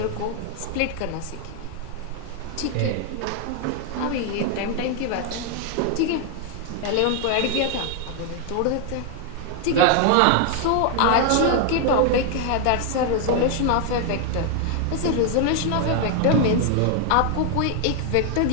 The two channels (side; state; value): both; different; correlation 0.00